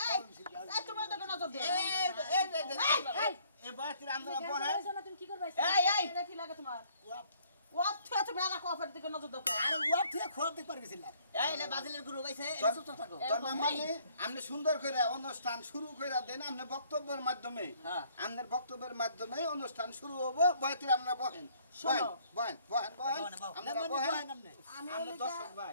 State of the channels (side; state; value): both; inverted; correlation -0.62